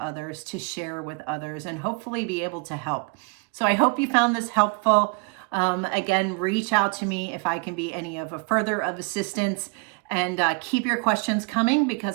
to share with others, and hopefully be able to help. So I hope you found this helpful. Again, reach out to me if I can be any of a further of assistance, and keep your questions coming,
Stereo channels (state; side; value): quieter; left; 32.6 dB